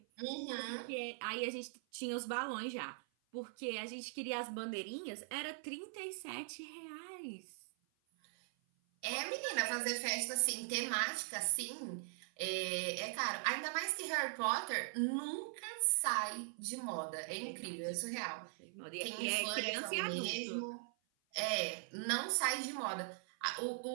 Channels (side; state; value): left; silent; 50 dB below the other